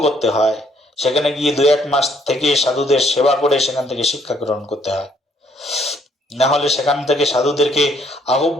করতে হয়, সেখানে গিয়ে 2-1 মাস থেকে সাধুদের সেবা করে সেখান থেকে শিক্ষা গ্রহণ করতে হয়। না হলে সেখান থেকে সাধুদেরকে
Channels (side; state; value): both; normal; correlation 0.67